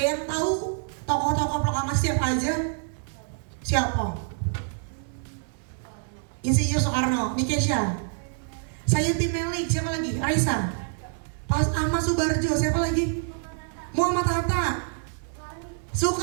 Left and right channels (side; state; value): left; silent; digital silence